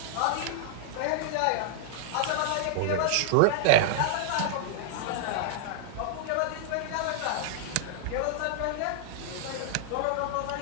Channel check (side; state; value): both; different; correlation -0.01